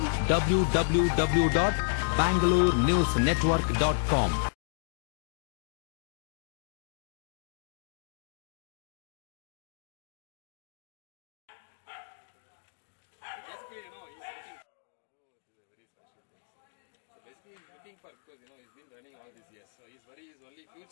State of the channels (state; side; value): silent; right; digital silence